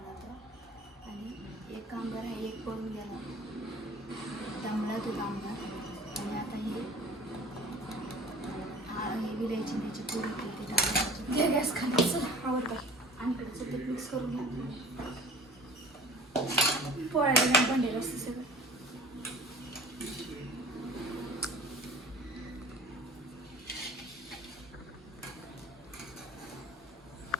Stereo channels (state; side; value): normal; both; correlation 0.45